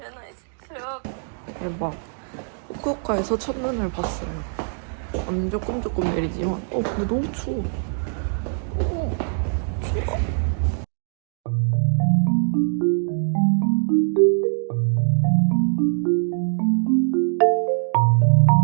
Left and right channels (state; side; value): silent; left; digital silence